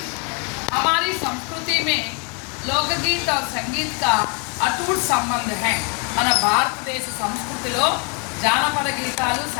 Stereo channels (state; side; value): quieter; right; 36.3 dB